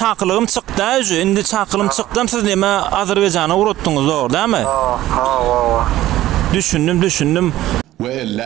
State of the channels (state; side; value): quieter; left; 14.8 dB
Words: çykdy, indi çaklym çykdym, siz näme Azerbaýjana uratdyňyz dogry, dämi? Ha. Düşündüm. Ve 50